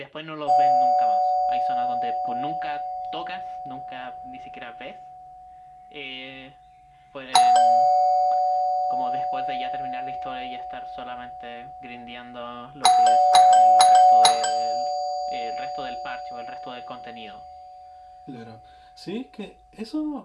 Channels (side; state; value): both; identical; correlation 1.00